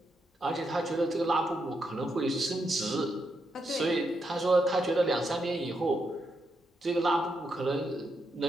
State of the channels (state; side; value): normal; both; correlation 0.82